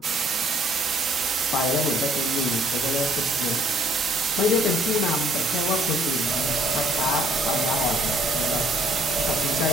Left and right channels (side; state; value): both; normal; correlation 0.62